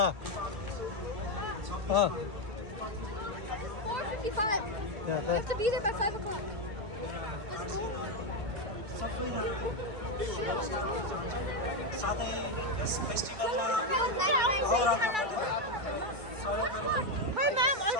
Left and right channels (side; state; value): left; late; 2.3 ms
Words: 啊。4:55. Yeah, We have to be there by 5 o'clock. Let's go. Hey ma'am,